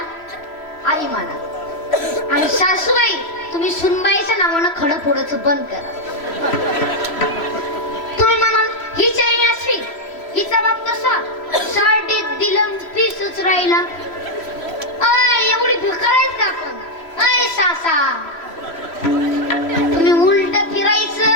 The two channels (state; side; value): late; right; 3.0 ms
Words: आई माना आणि सासूबाई तुम्ही सुनबाईच्या नावानं खडं फोडायचं बंद करा तुम्ही म्हणाल ही चैनी असवी हिचा बाप तसा साठीत दिलं पीसच राहिला एवढी भिकारायच का आपण सासा तुम्ही उलट फिरायचं